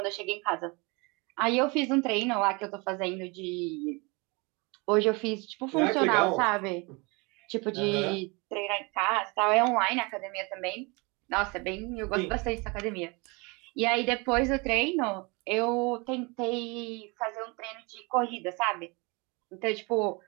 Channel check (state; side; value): quieter; left; 28.1 dB